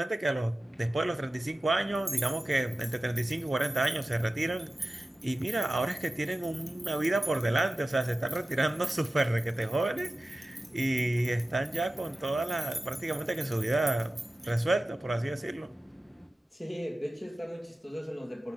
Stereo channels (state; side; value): normal; both; correlation 0.96